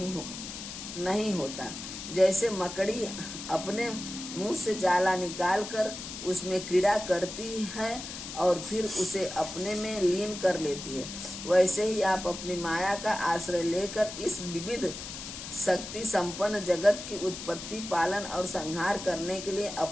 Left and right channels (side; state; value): left; noise; hiss, 9 dB below the sound